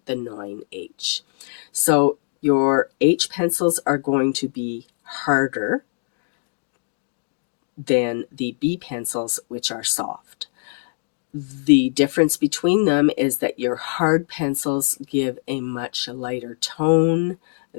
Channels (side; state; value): right; silent; digital silence